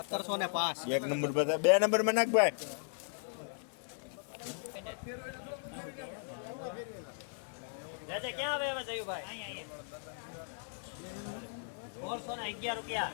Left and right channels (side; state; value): right; silent; 53 dB below the other